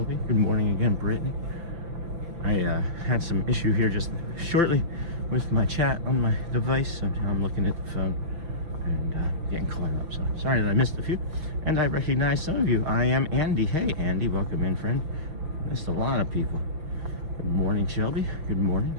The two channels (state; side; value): late; left; 5.9 ms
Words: Good morning again, Brittany. I had some issue here just shortly with my chat on my device, so I'm looking at the phone and getting caught up. So sorry that I missed a few. And I recognize some of you. I am Andy. Hey, Andy. Welcome in, friend. Missed a lot of people. Good morning, Shelby. Good morning.